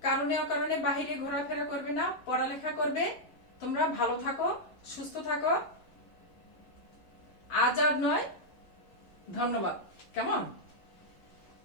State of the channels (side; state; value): right; late; 11 ms